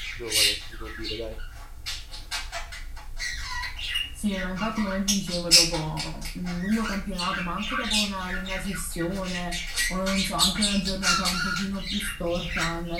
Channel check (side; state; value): both; identical; correlation 1.00